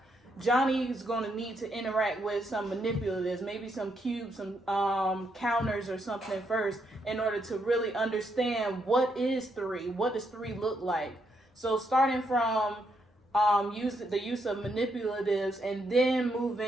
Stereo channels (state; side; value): normal; both; correlation 0.77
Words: Johnny is going to need to interact with some manipulatives, maybe some cubes, some counters or something first, in order to really understand what is 3, what does 3 look like. So starting from the use of manipulatives and then